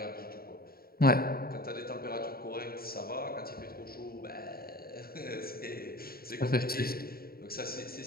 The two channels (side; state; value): right; late; 0.44 ms